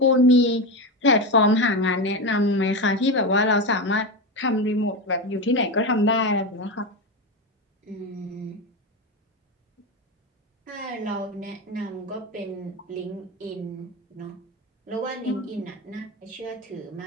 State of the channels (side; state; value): both; normal; correlation 0.17